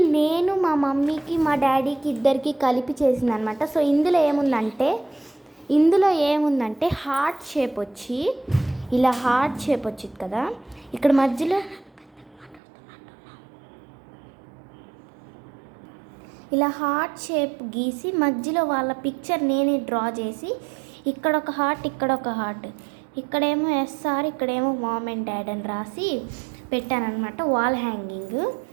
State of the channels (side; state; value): left; drops out; at 12.6 s